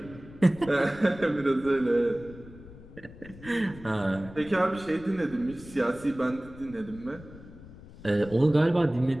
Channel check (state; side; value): noise; left; rumble, 18 dB below the sound